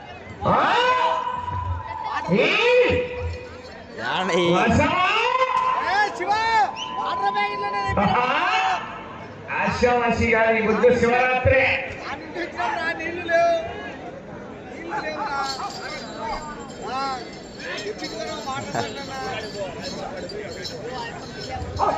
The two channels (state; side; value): identical; both; correlation 1.00